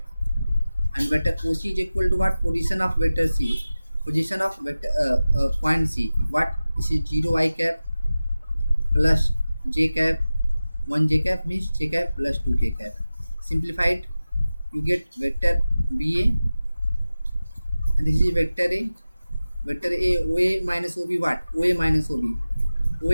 And vector OC is equal to what? Position of vector C. Position of vector point C. What? This is 0 I cap plus j cap. 1 j cap means j cap plus 2k cap. Simplified, you get vector BA, and this is vector A. Vector A, OA minus OB, what? OA minus OB.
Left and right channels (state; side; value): inverted; both; correlation -0.96